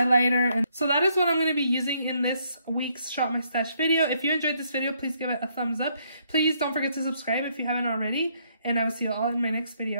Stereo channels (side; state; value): both; inverted; correlation -0.71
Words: And so that is what I'm going to be using in this week's Shop My Stash video. If you enjoyed this video, please give it a thumbs up. Please don't forget to subscribe if you haven't already. And I will see you all in my next